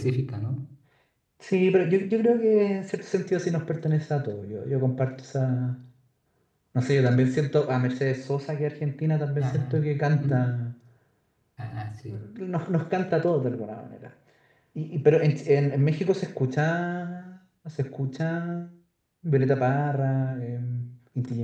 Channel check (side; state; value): both; identical; correlation 1.00